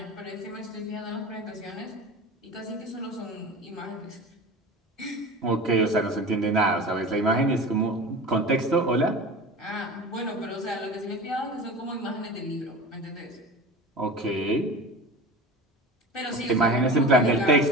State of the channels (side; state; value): both; normal; correlation 0.33